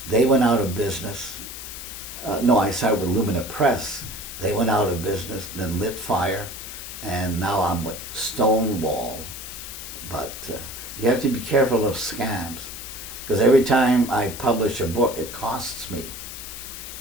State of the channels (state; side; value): noise; left; hiss, 10 dB below the sound